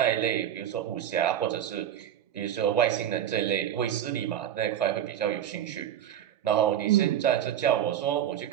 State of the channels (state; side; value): quieter; left; 10.4 dB